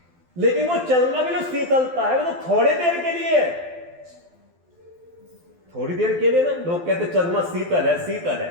लेकिन वो चंद्रमा की जो शीतलता है वो तो थोड़ी देर के लिए है, थोड़ी देर के लिए ना। लोग कहते चंद्रमा शीतल है, शीतल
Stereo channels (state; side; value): late; left; 12 ms